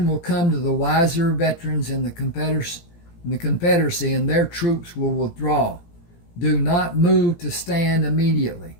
will come to the wiser veterans in the Confederacy, and their troops will withdraw. Do not move to stand immediately.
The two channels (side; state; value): right; late; 17 ms